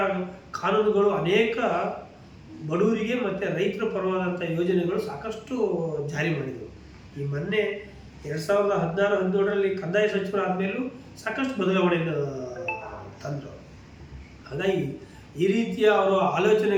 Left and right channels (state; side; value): identical; both; correlation 1.00